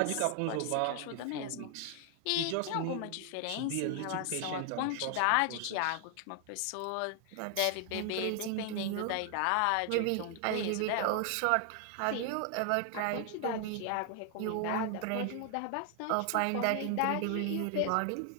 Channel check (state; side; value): different; both; correlation 0.00